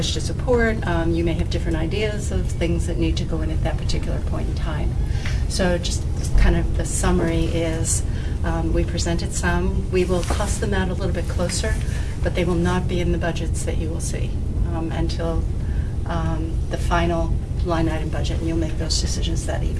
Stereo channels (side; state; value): both; identical; correlation 1.00